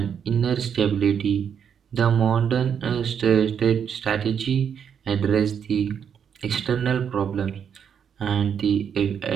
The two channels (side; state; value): left; quieter; 7.8 dB